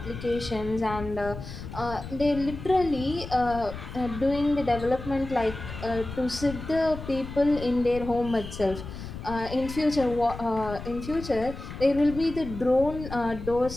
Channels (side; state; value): left; noise; rumble, 10 dB below the sound